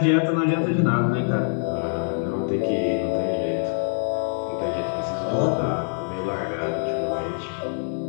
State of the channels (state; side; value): silent; right; digital silence